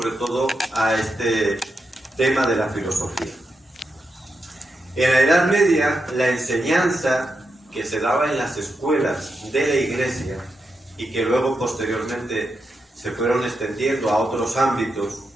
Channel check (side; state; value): both; normal; correlation 0.86